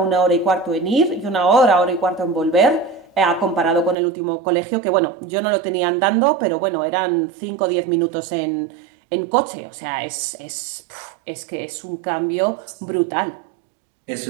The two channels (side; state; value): left; drops out; at 4.0 s